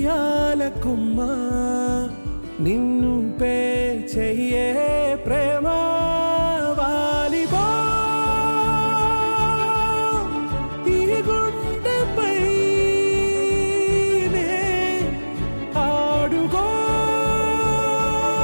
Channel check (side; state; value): both; inverted; correlation -1.00